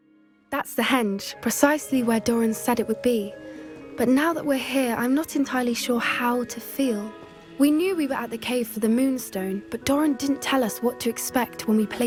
That's the henge, precisely where Doran said it would be. But now that we're here, I'm not entirely sure how to feel. We knew we were at the cave for the Moonstone, but Doran didn't tell us what to expect when we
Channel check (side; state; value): both; identical; correlation 1.00